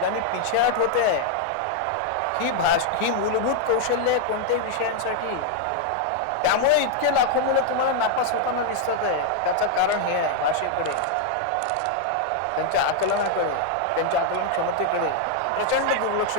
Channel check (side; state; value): both; different; correlation 0.00